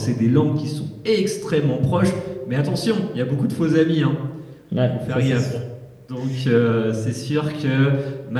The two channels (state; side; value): identical; both; correlation 1.00